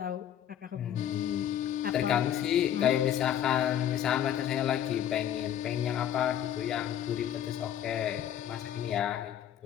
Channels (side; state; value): right; quieter; 10.5 dB